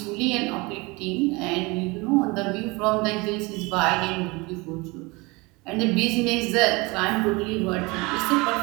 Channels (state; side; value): quieter; left; 25.2 dB